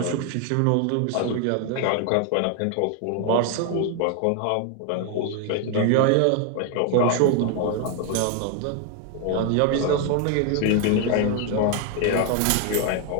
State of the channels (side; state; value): both; different; correlation 0.01